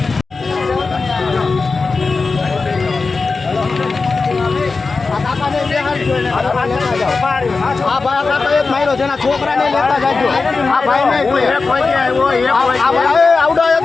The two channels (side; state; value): right; quieter; 4.2 dB